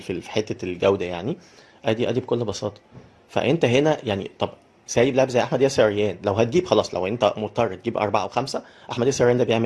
حته الجوده يعني. ادي بكل بساطه. فانت هنا يعني طب سايب لاعب زي احمد ياسر ريان، لو هتجيب خلاص، لو انت مضطر تجيب اربعه او خمسه، احمد ياسر ريان ده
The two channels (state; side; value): identical; both; correlation 1.00